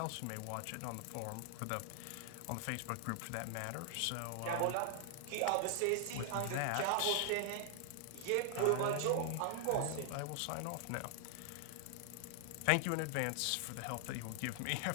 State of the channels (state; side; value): different; both; correlation 0.00